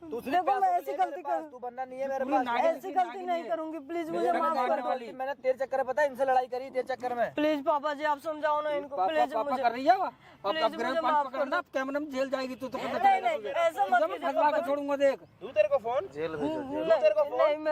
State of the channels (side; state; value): both; identical; correlation 1.00